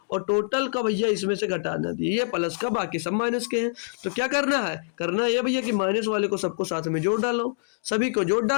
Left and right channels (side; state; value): right; silent; digital silence